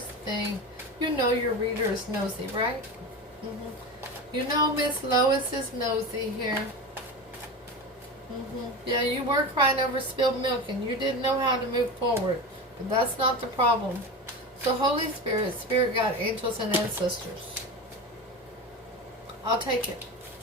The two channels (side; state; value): both; normal; correlation 0.25